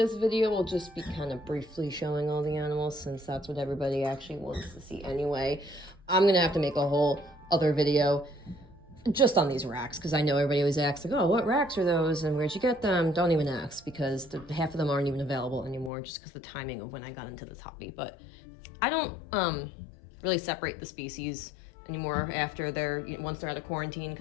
video will just be kind of briefly showing all the animals since that's what everybody actually wants to see anyway. I'm gonna have to make a whole other video just on these racks because I know everybody always asks like, oh, what racks are those and where'd you get them? Don't even ask because half of them aren't even available anymore just because the timing of when I got into this hobby. But I don't really separate the species anymore after once they're out of quarantine,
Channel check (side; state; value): right; drops out; at 15.9 s